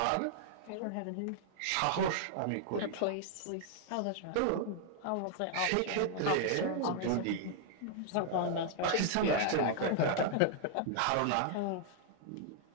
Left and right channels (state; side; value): different; both; correlation 0.00